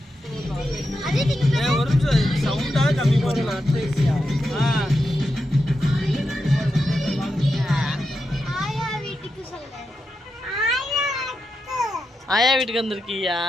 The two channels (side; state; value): both; normal; correlation 0.87